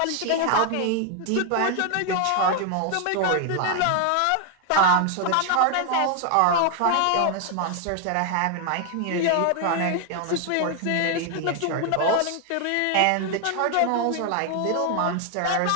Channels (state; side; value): different; both; correlation 0.00